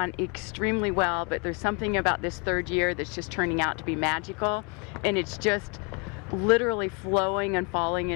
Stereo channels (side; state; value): right; quieter; 33.1 dB